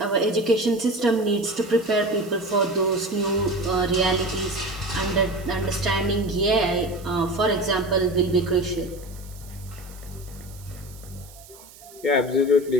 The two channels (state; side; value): noise; right; hiss, 21 dB below the sound